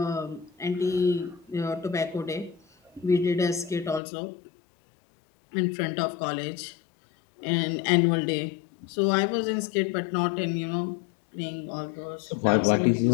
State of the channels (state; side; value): drops out; right; at 4.0 s